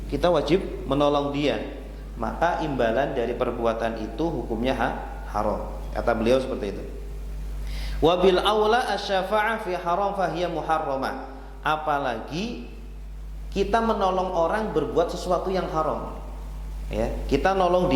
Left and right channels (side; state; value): both; identical; correlation 1.00